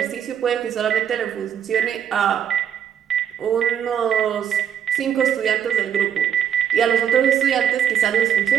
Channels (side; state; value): left; quieter; 8.9 dB